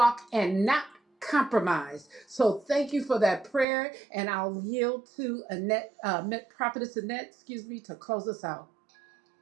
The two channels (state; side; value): drops out; left; at 3.7 s